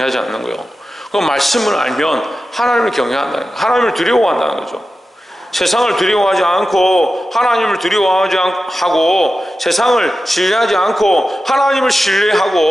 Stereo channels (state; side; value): normal; both; correlation 0.93